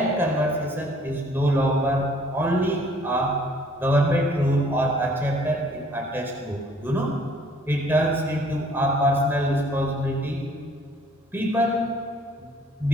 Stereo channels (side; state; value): both; normal; correlation 0.58